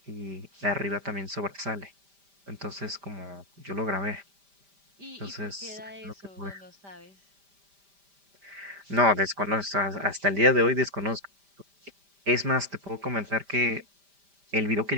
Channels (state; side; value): late; left; 5.1 ms